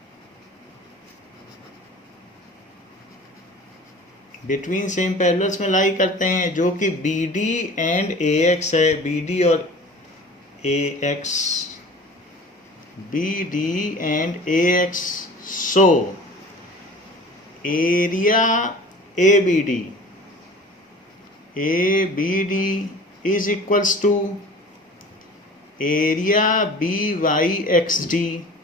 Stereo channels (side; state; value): both; normal; correlation 0.42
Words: Between same parallels में लाई करते हैं, जो कि BD एंड AX है, BD और AX, BD and AX। So area ABD is equals to area BYXD